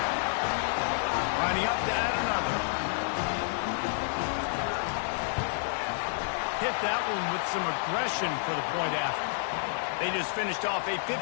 Lining up to add another. Hit that one with some aggression for the point after. They just finished off a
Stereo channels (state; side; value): silent; right; digital silence